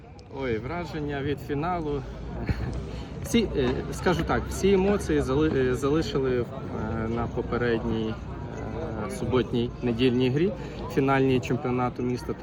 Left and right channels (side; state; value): both; identical; correlation 1.00